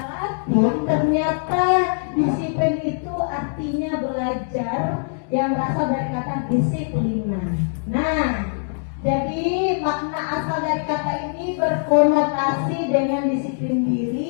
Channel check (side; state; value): right; silent; digital silence